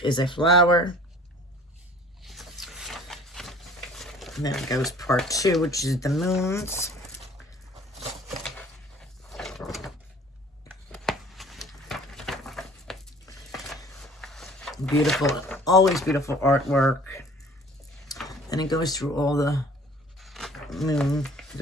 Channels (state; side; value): normal; both; correlation 0.50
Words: is a flower. And then it goes part 2, which is the moons. Beautiful, always beautiful artwork. And it goes through all the moon,